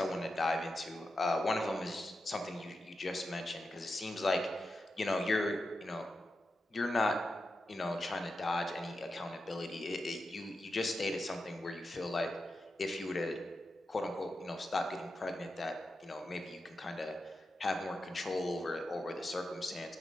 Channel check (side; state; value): both; normal; correlation 0.89